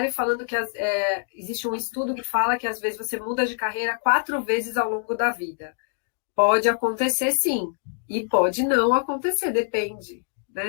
falando que existe um estudo que fala que às vezes você muda de carreira 4 vezes ao longo da vida. Pode acontecer sim, e pode não acontecer, depende.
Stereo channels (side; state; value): right; silent; digital silence